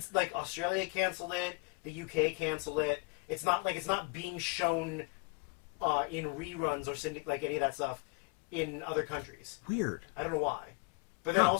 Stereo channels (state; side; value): quieter; right; 29.3 dB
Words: like Australia canceled it. The UK canceled it. It's not being shown in reruns or like any of that stuff in other countries. Weird. I don't know why. But then